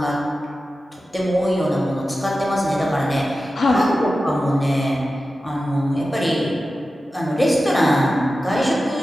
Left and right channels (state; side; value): normal; both; correlation 0.93